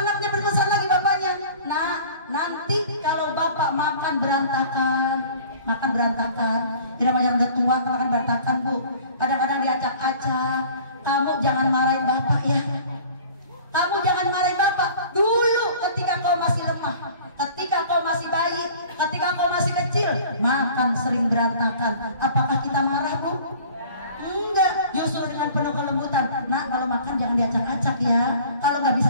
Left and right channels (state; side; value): inverted; both; correlation -0.47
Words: anaknya berpesan lagi bapaknya? Nah, nanti kalau bapak makan berantakan, ini namanya udah tua, makan berantakan Bu. Kadang-kadang di diacak-acak. Kamu jangan marahin bapak ya. Kamu jangan marahin bapak. Dulu ketika kau masih lemah, ketika kau masih bayi, ketika kau masih kecil, makan sering berantakan. Apakah kita marah, Bu? Enggak, justru dengan penuh kelembutan. Nak, kalau makan jangan diacak-acak ya. Kalau nggak bisa